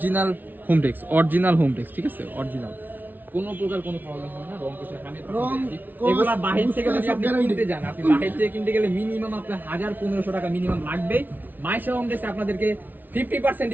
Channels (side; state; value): left; late; 0.086 ms